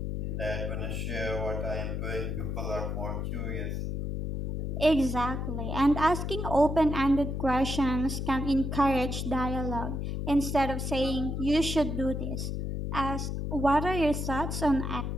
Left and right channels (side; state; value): left; noise; hum, 2 dB below the sound